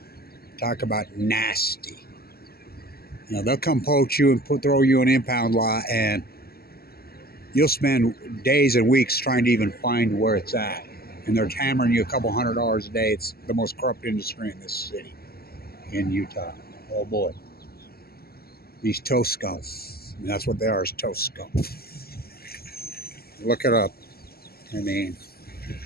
Talk about nasty. You know, they'll come poach you and throw you an impound lot, and you'll spend days and weeks trying to even find where it's at. And they're hammering you a couple $100 a day. It's the most corrupt industry in this city, in Utah. Oh boy. These toast scum. And that's what they are, is toast scum. Look it up. I mean,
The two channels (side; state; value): right; late; 0.45 ms